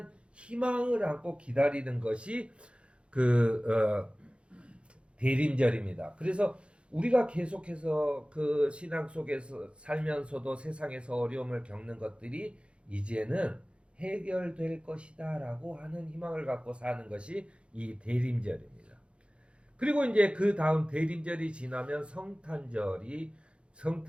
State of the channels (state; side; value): late; left; 0.058 ms